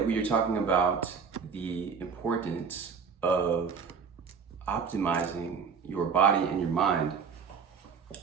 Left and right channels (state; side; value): quieter; left; 6.0 dB